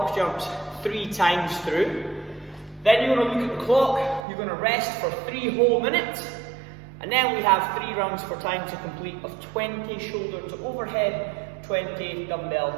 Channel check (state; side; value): drops out; left; at 4.2 s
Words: jumps, 3 times through. Then you're going to look at the clock, you're going to rest for 3 whole minutes. And then we have 3 rounds for time to complete of 20 shoulder to overhead, 20 dumbbell